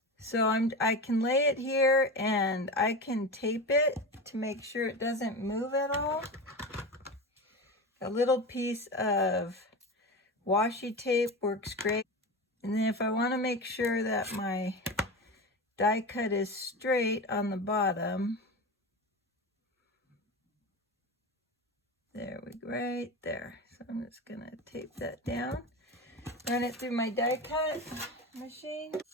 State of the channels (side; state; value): both; normal; correlation 0.25